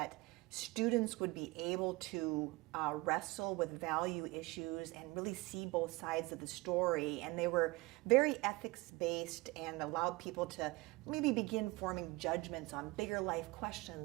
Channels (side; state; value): left; quieter; 23.0 dB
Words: students would be able to wrestle with value issues and really see both sides of the story. And they were very ethics-based and allowed people to maybe begin forming judgments on bigger life